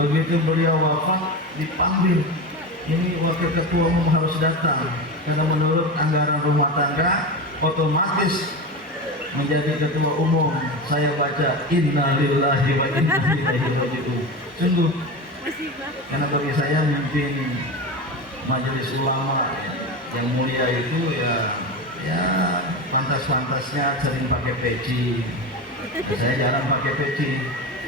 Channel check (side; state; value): both; normal; correlation 0.23